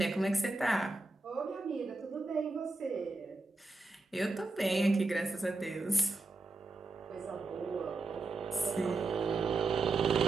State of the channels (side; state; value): left; quieter; 3.3 dB